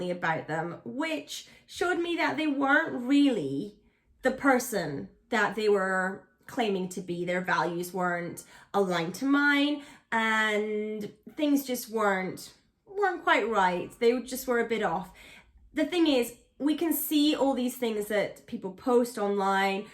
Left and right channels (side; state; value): both; identical; correlation 1.00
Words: about them, which showed me that they weren't really the person that they were claiming to be. Their values weren't aligned to mine, and things just weren't quite right. They just were a bit off. The thing is, we can see all these things that people post online.